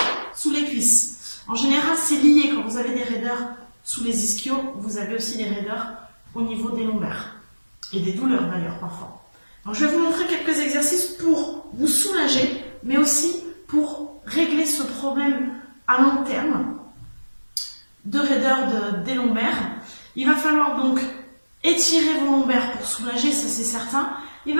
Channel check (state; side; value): inverted; both; correlation -1.00